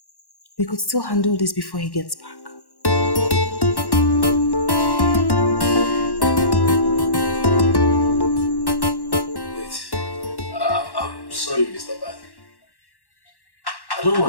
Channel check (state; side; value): late; right; 1.1 ms